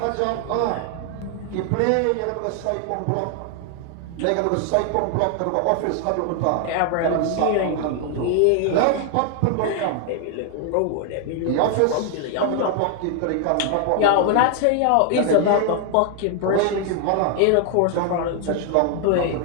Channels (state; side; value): different; both; correlation 0.00